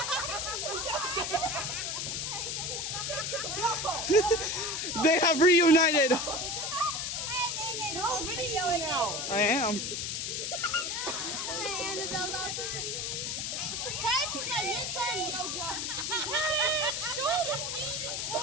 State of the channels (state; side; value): noise; left; hiss, 2 dB below the sound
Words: they have reunited. You're video now. I am. Hey, Annabelle, that's pretty. Time for my midterm yoga. Head, shoulders, knees and